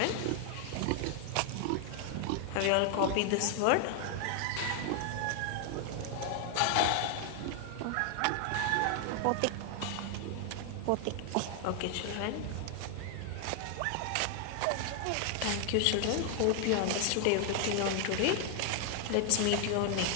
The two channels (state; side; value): different; both; correlation 0.00